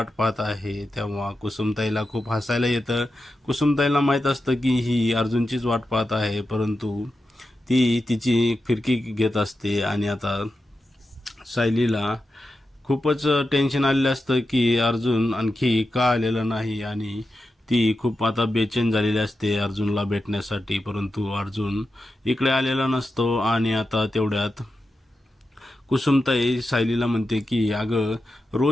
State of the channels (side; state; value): both; normal; correlation 0.90